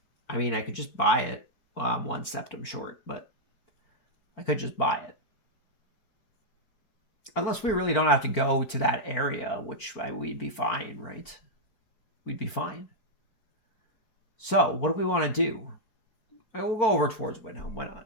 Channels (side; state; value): right; late; 4.5 ms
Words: I mean, I could just buy it. Well, I'm 1 septum short, but I could just buy it. Unless we really don't have to go to that area, which we'd be fine, right? We'd be fine. So, what do we want to do? We'll go over towards Windhelm. Why not?